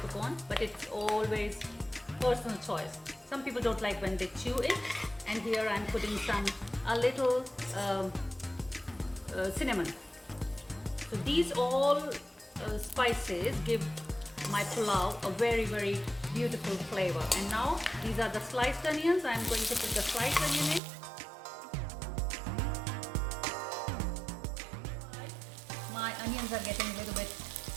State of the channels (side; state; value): left; drops out; at 20.8 s